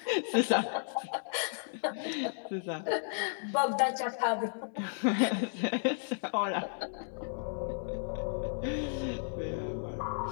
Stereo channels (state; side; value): silent; right; 55 dB below the other